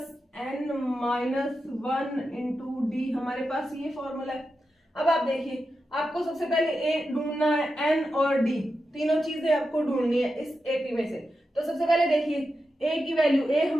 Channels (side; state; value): both; normal; correlation 0.89